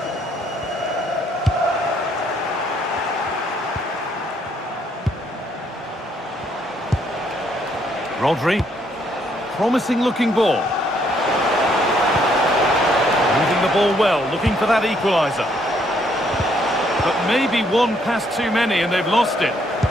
Rodri. Promising looking ball. Moving the ball well, looking for that equaliser. But maybe one pass too many and they've lost it.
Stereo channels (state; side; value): normal; both; correlation 0.70